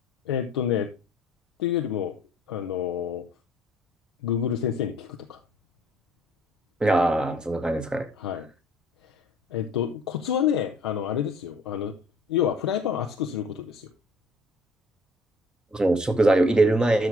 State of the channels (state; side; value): normal; both; correlation 0.56